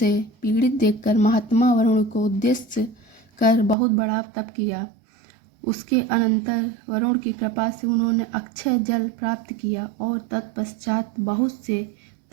पीड़ित देखकर महात्मा वरुण को उद्देश्य कर बहुत बड़ा तप किया। उसके अनंतर वरुण की कृपा से उन्होंने अक्षय जल प्राप्त किया और तत्पश्चात बहुत से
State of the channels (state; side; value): drops out; left; at 3.8 s